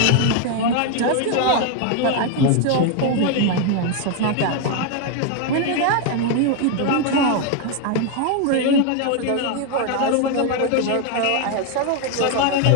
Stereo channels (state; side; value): different; both; correlation 0.01